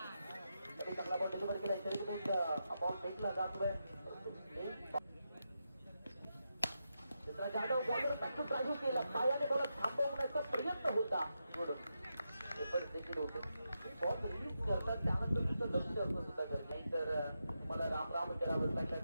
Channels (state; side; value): inverted; both; correlation -0.86